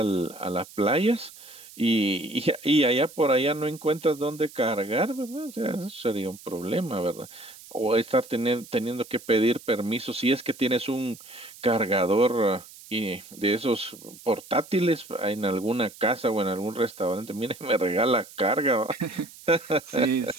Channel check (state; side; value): noise; right; hiss, 19 dB below the sound